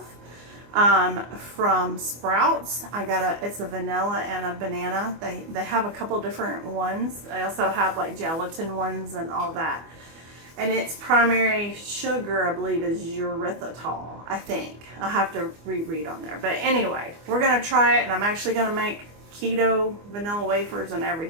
from Sprouts. It's a vanilla and a banana. They have a couple different ones. They also have like gelatin ones and all that. And its primary sugar, I believe, is erythritol, I think. I'll have to reread on there. But anyway, we're going to try it, and I'm actually going to make keto vanilla wafers and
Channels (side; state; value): left; late; 24 ms